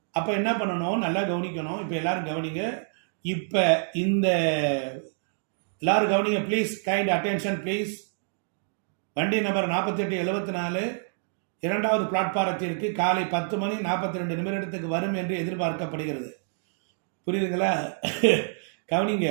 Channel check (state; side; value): silent; left; digital silence